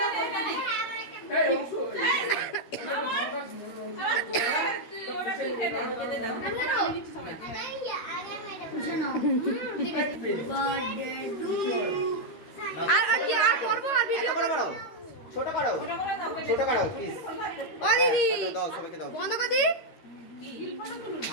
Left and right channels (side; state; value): right; late; 13 ms